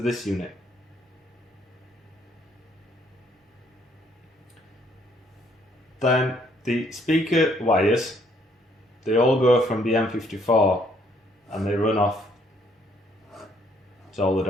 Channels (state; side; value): normal; both; correlation 0.67